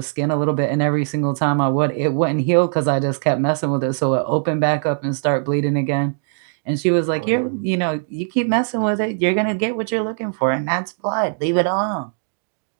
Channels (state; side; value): silent; left; digital silence